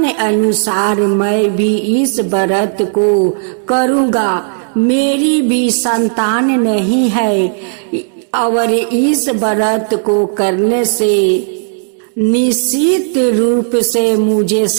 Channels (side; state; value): left; silent; digital silence